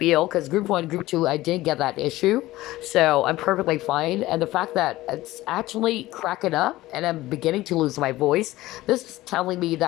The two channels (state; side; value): quieter; right; 17.2 dB